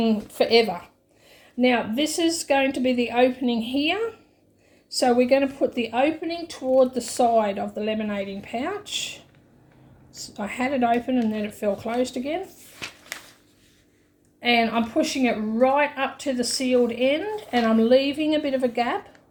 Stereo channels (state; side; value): identical; both; correlation 1.00